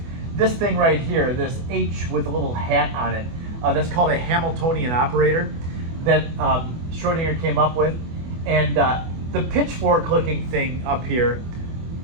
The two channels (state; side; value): late; left; 24 ms